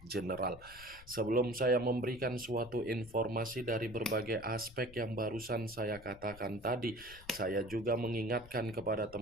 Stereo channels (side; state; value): left; noise; rumble, 19 dB below the sound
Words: general. Sebelum saya memberikan suatu informasi dari berbagai aspek yang barusan saya katakan tadi, saya juga mengingatkan kepada